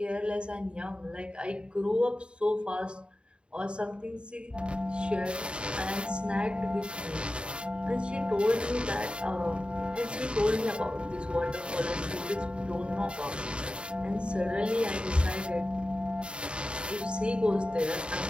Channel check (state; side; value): late; left; 0.053 ms